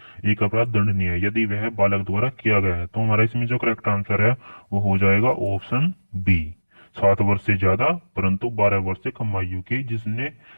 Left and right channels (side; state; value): both; inverted; correlation -1.00